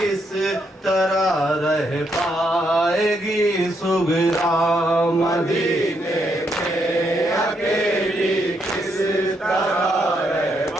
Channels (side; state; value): both; normal; correlation 0.77